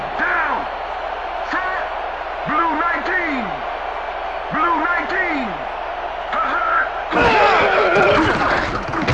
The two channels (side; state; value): both; identical; correlation 1.00